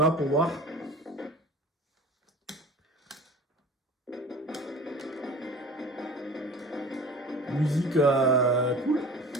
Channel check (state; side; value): normal; both; correlation 0.40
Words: pour voir. Musique cool.